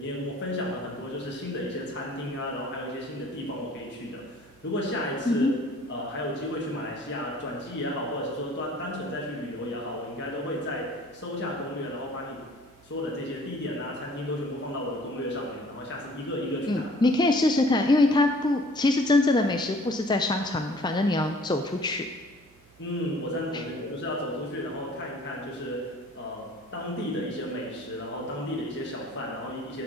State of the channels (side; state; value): right; noise; hum, 28 dB below the sound